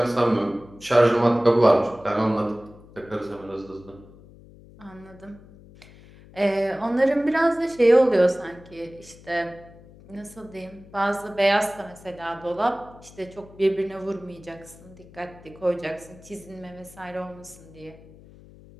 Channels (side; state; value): left; noise; hum, 22 dB below the sound